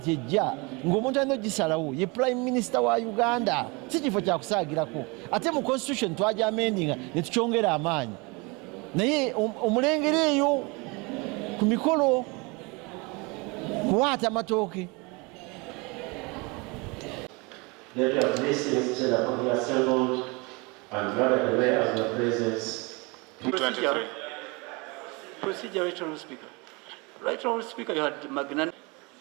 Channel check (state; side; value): quieter; left; 27.8 dB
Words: ejja ng'omuntu alina ogisalawo ye prime minister wa Uganda si kifo kyakusaagirako ate mu constitution twaja amendinga ne tukyongera amaanyi naye omulengero eyo ku mikolo kuwaata amatooke. Lady of blessings said upon the assembled and gathered away as your presence. Procedure, Right Honourable Speaker. Right Honourable Speaker, you had magnanimity,